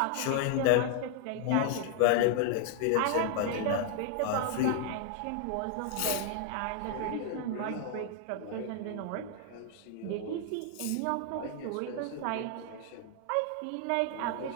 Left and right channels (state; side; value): different; both; correlation 0.00